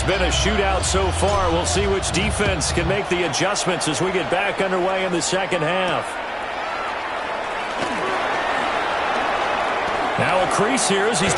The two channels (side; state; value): both; identical; correlation 1.00